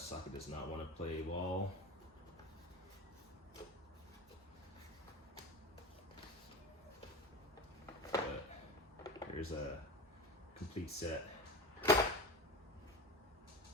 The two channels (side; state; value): both; normal; correlation 0.30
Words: does not want to play ball. But here's a complete set.